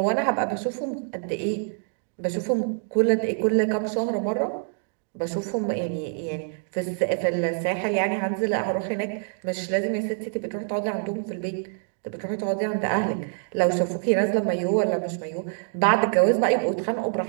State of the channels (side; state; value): left; silent; digital silence